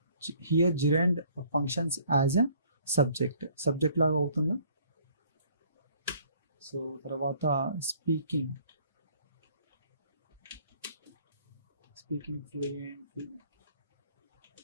Here gerund functions as a subject లాగా అవుతుందా? సో తర్వాత speaking fluently.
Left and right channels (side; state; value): both; inverted; correlation -0.59